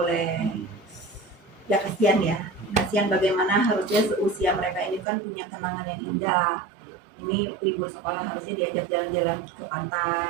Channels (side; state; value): left; drops out; at 5.1 s